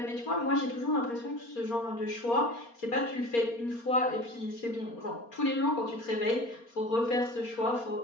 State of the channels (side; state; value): right; late; 4.3 ms